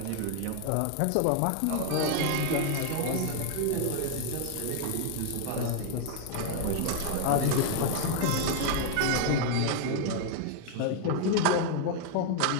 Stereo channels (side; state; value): both; different; correlation 0.00